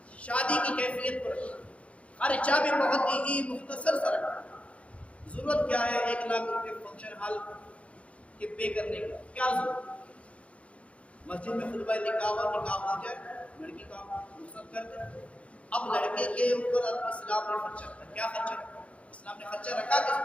شادی کی کیفیت پر خرچہ بھی بہت ہی مختصر سا رکھا. ضرورت کیا ہے 1 لاکھ روپے فنکشن ہال کے پے کرنے کا؟ کیا ضرورت؟ مسجد میں خطبہ نکاح ہو جائے، لڑکی کا رخصت کر دیں. اب لڑکے کے اوپر اسلام نے خرچہ رکھا. کیا خرچہ رکھا؟ اسلام نے خرچہ رکھا کس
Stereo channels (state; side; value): late; right; 0.063 ms